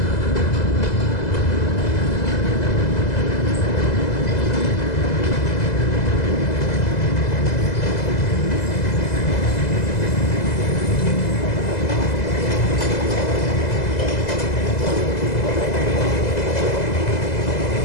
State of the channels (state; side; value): late; right; 2.0 ms